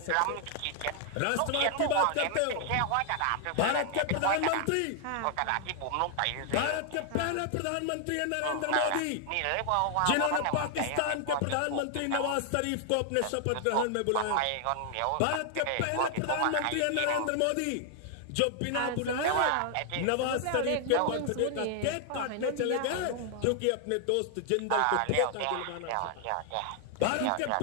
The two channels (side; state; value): both; different; correlation 0.00